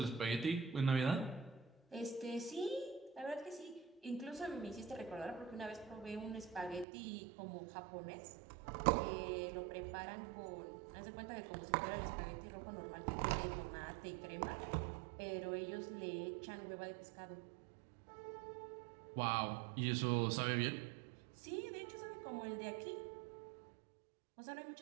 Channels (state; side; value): drops out; left; at 6.9 s